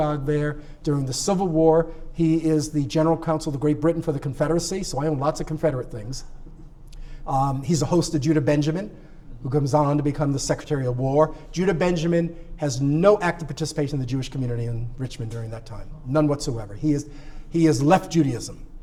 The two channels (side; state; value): both; identical; correlation 1.00